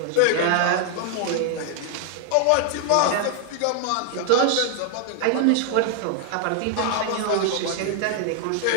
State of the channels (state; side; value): different; both; correlation 0.00